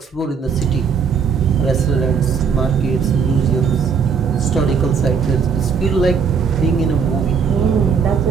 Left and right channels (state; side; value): quieter; left; 6.2 dB